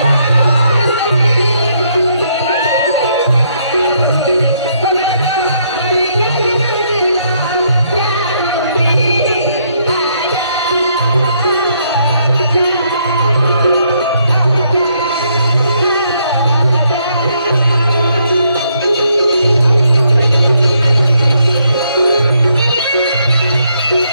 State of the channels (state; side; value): inverted; both; correlation -0.73